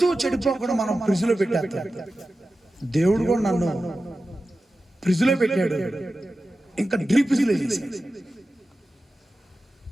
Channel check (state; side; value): normal; both; correlation 0.94